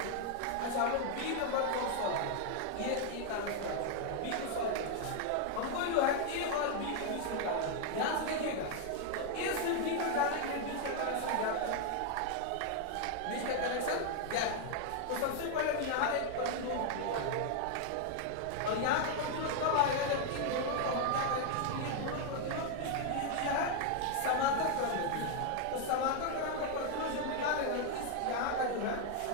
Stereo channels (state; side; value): different; both; correlation 0.00